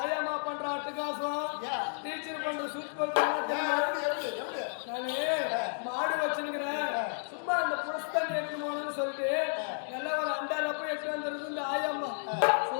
ஆயாமா பண்ற அட்டகாசம், டீச்சர் பண்ற சூப்பர். நானு மாடு வச்சிருக்கிறேன். சும்மா அந்த புரஸ்தான் எடுத்து போகணும்னு சொல்லிட்டு நல்லா ஒரு அண்டால போய் எடுத்து வந்துருது இந்த ஆயாமா.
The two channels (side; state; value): right; silent; digital silence